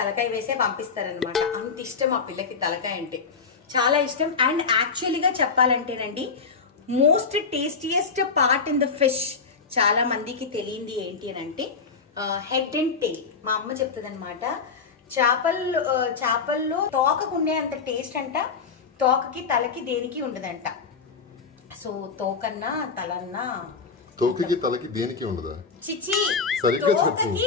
వేసే పంపిస్తారనమాట. అంత ఇష్టం ఆ పిల్లకి తలకాయ అంటే, చాలా ఇష్టం. అండ్ యాక్చువల్లీగా చెప్పాలంటేనండి most tastiest part in the fish చాలా మందికి తెలియంది ఏంటి అని అంటే హెడ్ అండ్ టెయిల్. మా అమ్మ చెప్తుంది అనమాట, చేపల్లో తోకకుండే అంత టేస్ట్ అంట తోకకి తలకి దేనికి ఉండదంట. సో తోకన్నా తలన్నా, తోకకి తలకి దేనికి ఉండదా? చిచి, తోకకి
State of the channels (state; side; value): quieter; right; 5.1 dB